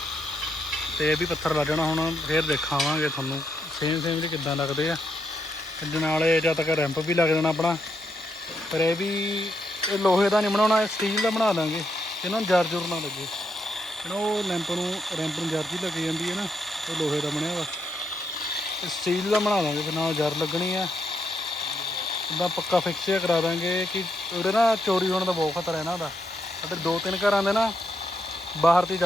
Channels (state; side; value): normal; both; correlation 0.79